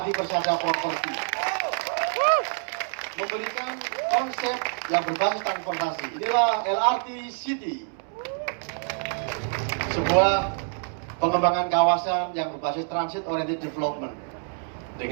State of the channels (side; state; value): left; silent; 61 dB below the other